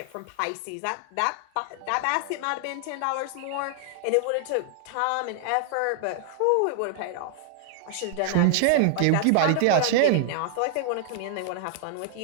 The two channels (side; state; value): both; different; correlation 0.00